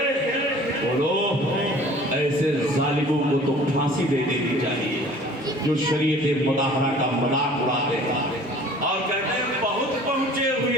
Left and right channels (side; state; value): both; normal; correlation 0.48